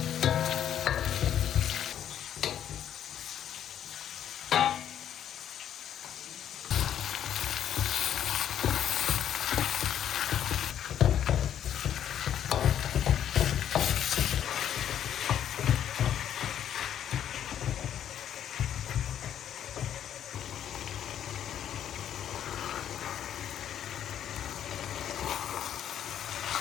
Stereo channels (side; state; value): right; quieter; 10.1 dB